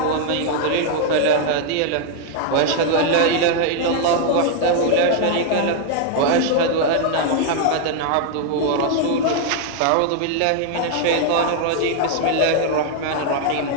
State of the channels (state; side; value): different; both; correlation 0.00